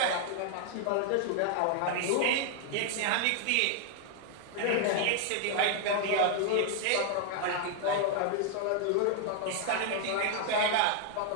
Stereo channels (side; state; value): both; different; correlation 0.00